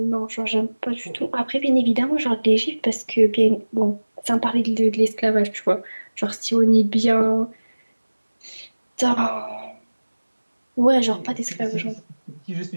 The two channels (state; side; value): inverted; both; correlation -1.00